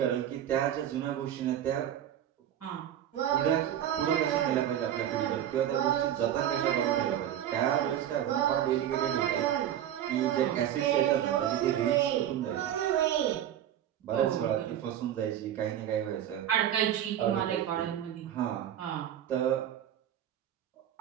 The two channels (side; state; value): left; quieter; 10.8 dB